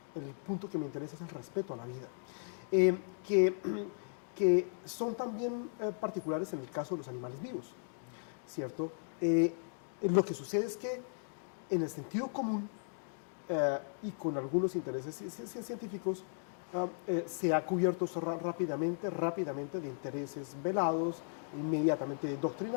El punto que me interesa es el respeto a la vida, que son también particulares en el caso de los animales vivos, ¿cierto? Lo que sucede es que en el sentido común y con algunos intereses científicos se ha cubierto rápidamente de intereses velados, inmediatamente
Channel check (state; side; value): silent; right; digital silence